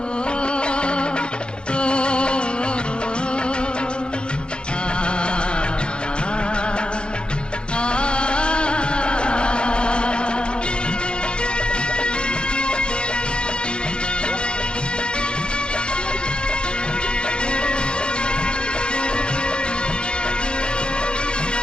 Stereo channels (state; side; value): late; right; 0.052 ms